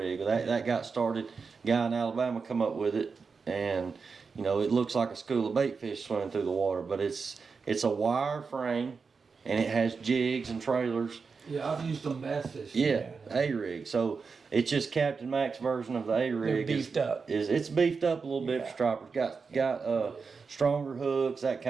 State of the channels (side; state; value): left; quieter; 5.0 dB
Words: That got started. Guy in Alabama come up with it, and it looks like a school of bait fish swimming through the water. But it's a wire frame, and it has jigs and trailers. Yeah, I've used them bass fishing. Yeah, A rig. So it's just Captain Mac's version of the A rig. They're beefed up. It's beefed up a little bit for stripers. Got stronger hooks, that